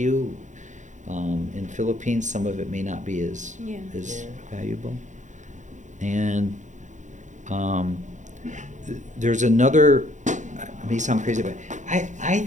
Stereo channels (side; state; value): left; late; 0.35 ms